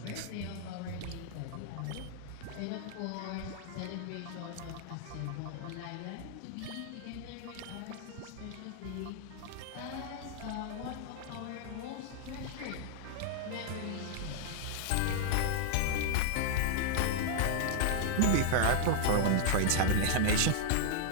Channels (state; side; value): different; both; correlation -0.01